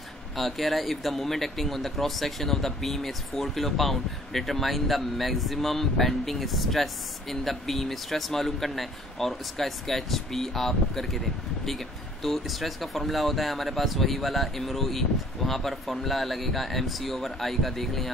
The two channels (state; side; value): normal; both; correlation 0.55